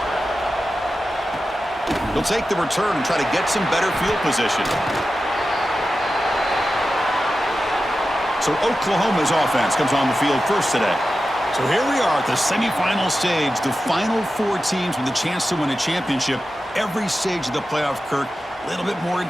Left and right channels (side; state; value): both; normal; correlation 0.92